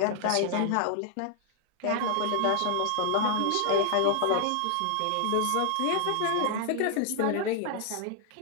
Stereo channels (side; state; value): both; different; correlation 0.00